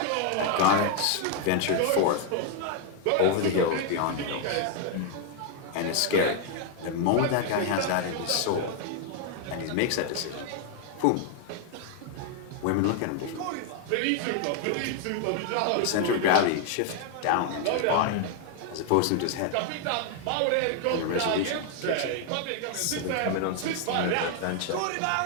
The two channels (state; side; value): different; both; correlation 0.00